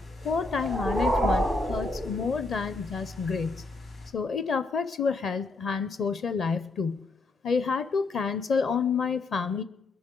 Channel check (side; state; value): right; quieter; 3.5 dB